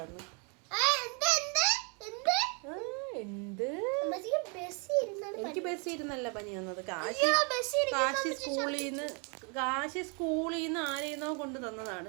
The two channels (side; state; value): left; quieter; 35.7 dB